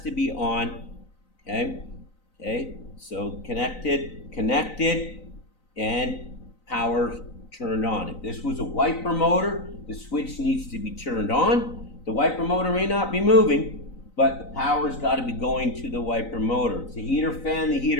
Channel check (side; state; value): right; late; 3.9 ms